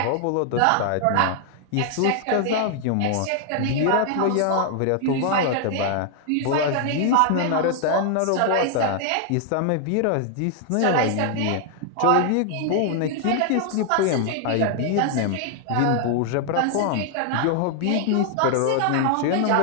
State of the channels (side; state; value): both; different; correlation 0.00